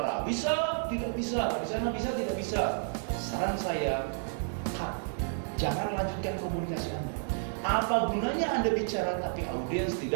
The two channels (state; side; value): silent; left; digital silence